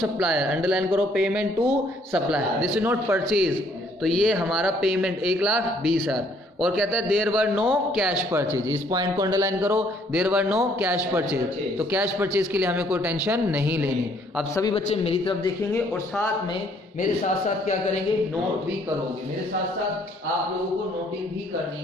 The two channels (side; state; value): both; normal; correlation 0.64